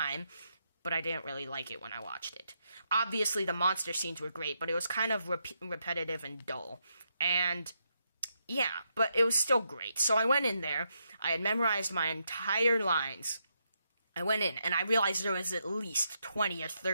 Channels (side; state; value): both; inverted; correlation -0.81